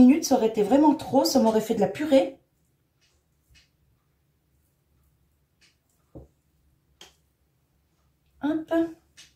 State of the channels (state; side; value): identical; both; correlation 1.00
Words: ça aurait été vraiment trop. Ça m'aurait fait de la purée. Hop.